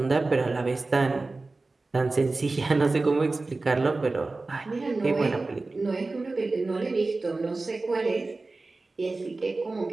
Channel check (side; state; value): left; quieter; 3.4 dB